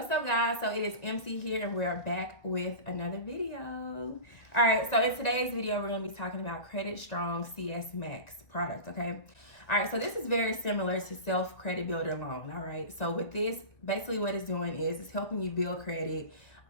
up, guys? So it is MC here and we're back with another video. All right, so in today's video we're going to be talking about Credit Strong CS Max product. Okay, all right, so this is very similar to Self Credit Builder Loan. All right, so with this, basically what it's doing is it's helping you build credit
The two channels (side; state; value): right; late; 1.7 ms